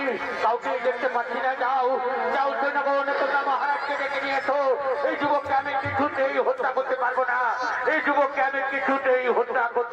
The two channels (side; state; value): both; identical; correlation 1.00